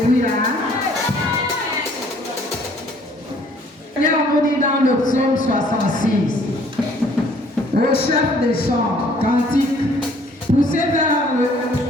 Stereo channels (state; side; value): normal; both; correlation 0.58